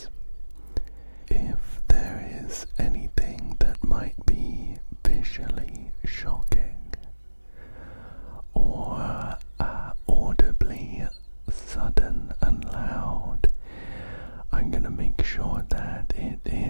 If there is anything that might be visually shocking or audibly sudden and loud, I'm gonna make sure that it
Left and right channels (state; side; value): inverted; both; correlation -1.00